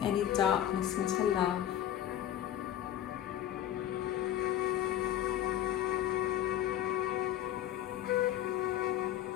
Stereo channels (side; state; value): right; quieter; 11.6 dB